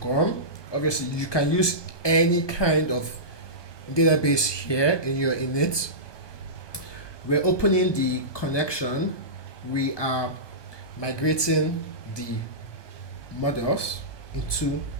Gorm. Obviously, you can use any kind of database here in your init. We're opening the connection. We are migrating the models into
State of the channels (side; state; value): right; late; 1.2 ms